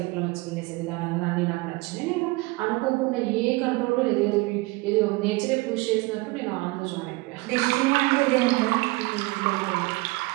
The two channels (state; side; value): quieter; left; 23.5 dB